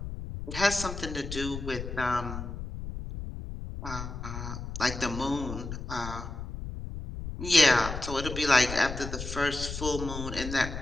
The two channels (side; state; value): left; noise; rumble, 7 dB below the sound